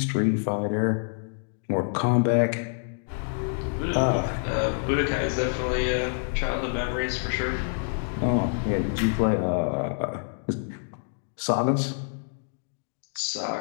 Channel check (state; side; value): silent; right; digital silence